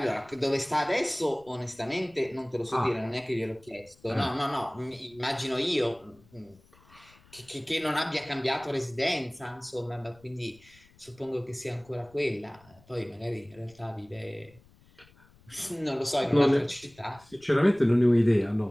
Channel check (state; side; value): noise; left; rumble, 28 dB below the sound